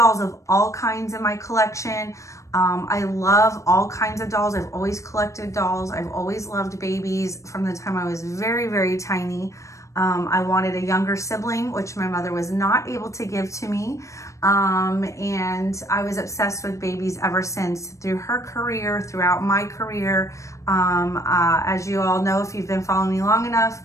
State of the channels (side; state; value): right; late; 0.15 ms